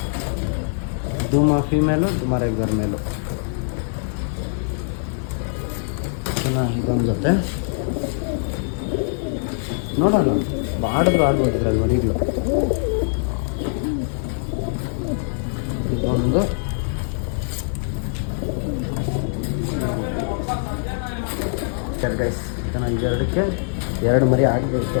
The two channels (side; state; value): right; silent; digital silence